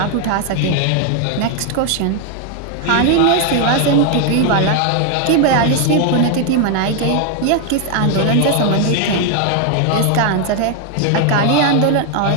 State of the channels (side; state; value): both; different; correlation 0.00